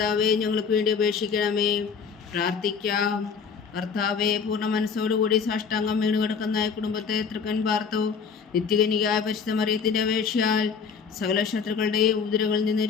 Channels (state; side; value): quieter; right; 6.0 dB